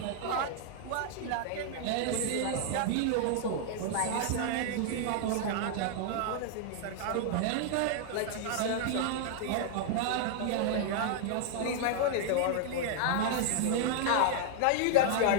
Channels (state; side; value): different; both; correlation -0.01